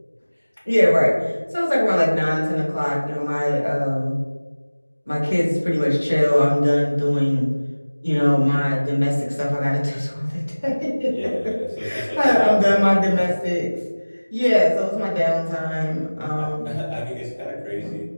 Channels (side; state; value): both; inverted; correlation -1.00